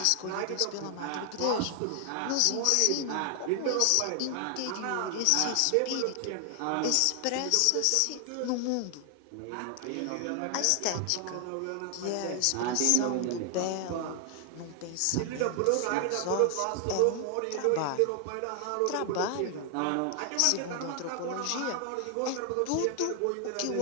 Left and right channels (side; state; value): both; different; correlation 0.00